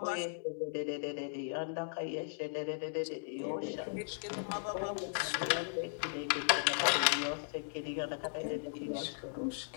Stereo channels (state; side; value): silent; right; digital silence